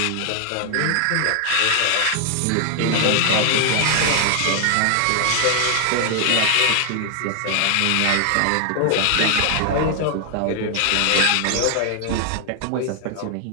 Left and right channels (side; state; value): both; different; correlation 0.00